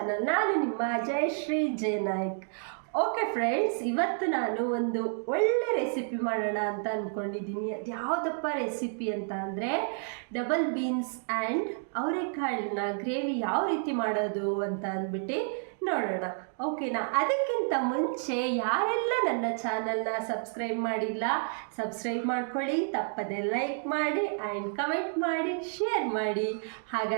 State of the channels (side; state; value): left; silent; 58 dB below the other